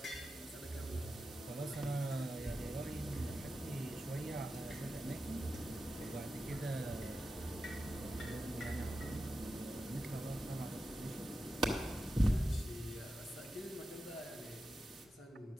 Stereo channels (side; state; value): both; normal; correlation 0.91